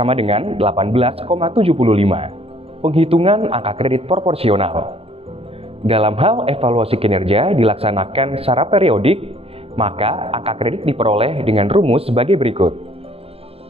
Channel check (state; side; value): late; left; 0.28 ms